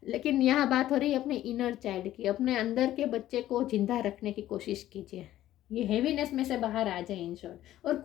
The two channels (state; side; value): quieter; right; 13.7 dB